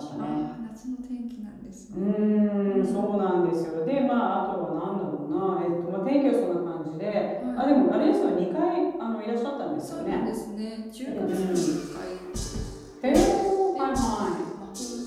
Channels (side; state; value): both; identical; correlation 1.00